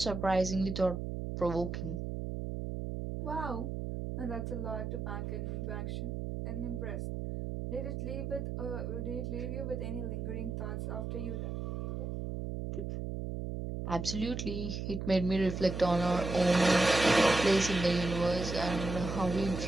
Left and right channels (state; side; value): noise; right; hum, 4 dB below the sound